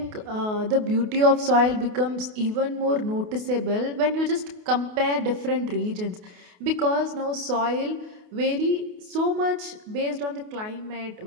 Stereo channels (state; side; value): late; left; 28 ms